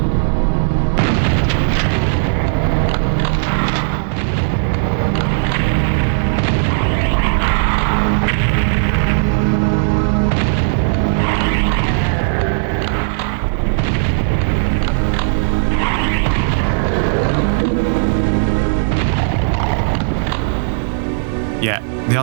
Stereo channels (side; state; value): left; silent; 65 dB below the other